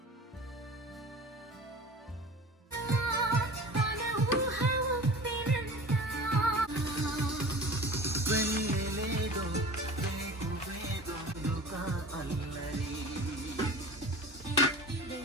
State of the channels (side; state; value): both; normal; correlation 0.38